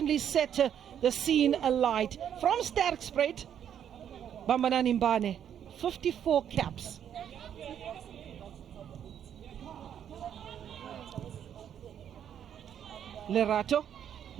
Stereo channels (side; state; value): left; quieter; 9.3 dB